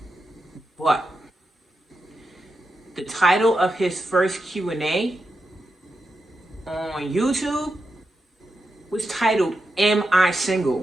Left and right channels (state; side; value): normal; both; correlation 0.87